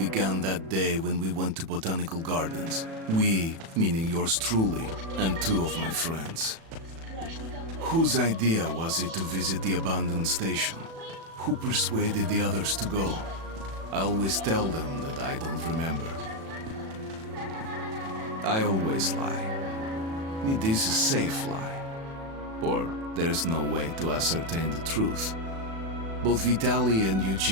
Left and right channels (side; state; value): left; late; 36 ms